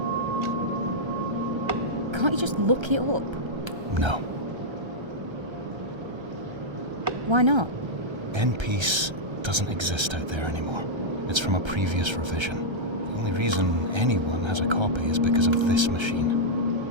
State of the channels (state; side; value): late; left; 1.3 ms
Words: Can't you just look it up? No. Why not? N-Piece doesn't exist out there anymore. It's from a previous revision. The only reason anyone has a copy is because of this machine.